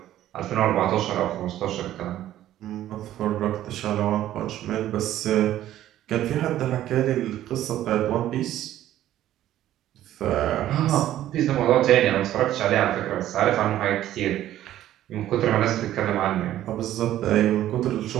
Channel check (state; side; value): quieter; left; 12.9 dB